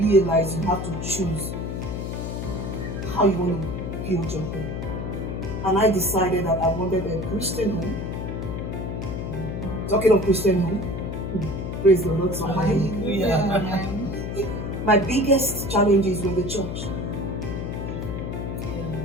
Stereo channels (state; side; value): noise; left; hum, 4 dB below the sound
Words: you have to choose how you want to build your home. And I decided that I wanted a Christian home. Talking of Christian home, praise the Lord. My biggest challenges were the church.